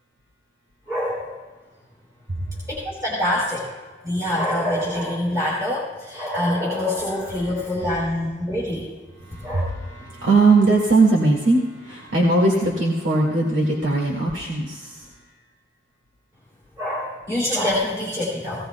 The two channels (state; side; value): normal; both; correlation 0.66